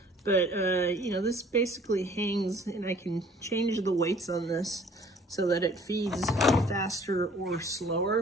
but you know, this basically hangs, and I can change the weights on this so that it feeds faster or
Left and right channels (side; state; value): both; normal; correlation 0.55